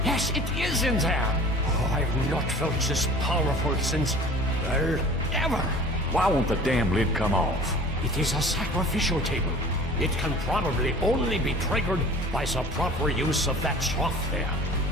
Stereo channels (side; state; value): both; normal; correlation 0.44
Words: Yes, it is in there. Oh, I've not felt this powerful since, well, ever. Why won't the damn lid come off? It is a sacrificial table. It can probably only be triggered by the proper use of that trough there.